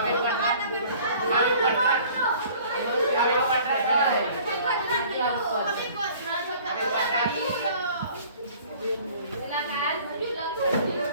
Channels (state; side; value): inverted; both; correlation -0.51